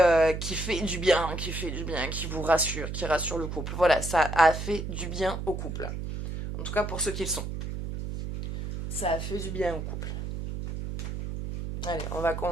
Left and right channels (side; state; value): right; noise; hum, 5 dB below the sound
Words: qui fait du bien, qui vous rassure, qui rassure le couple. Voilà, ça a fait du bien au couple. En tout cas pour ceux qui le sont. Ça a fait du bien au couple. Allez, on va